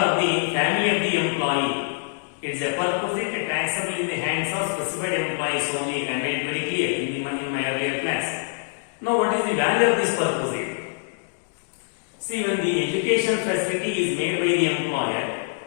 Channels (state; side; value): silent; right; digital silence